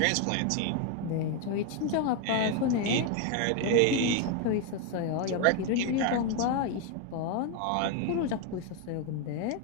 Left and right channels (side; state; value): both; different; correlation 0.01